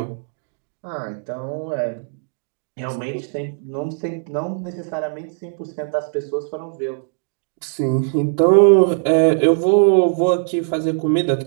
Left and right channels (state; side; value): silent; left; 65 dB below the other